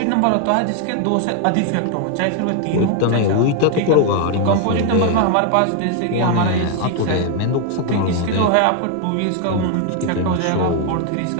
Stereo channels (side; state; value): both; different; correlation 0.00